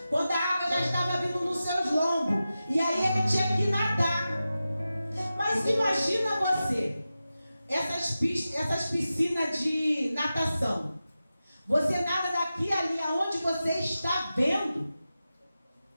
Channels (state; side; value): inverted; both; correlation -0.93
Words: quando a água já estava vindo nos seus lombos, e aí ele tinha que nadar. Mas imagina você, essas piscinas de natação. Você nada daqui ali aonde você está vendo.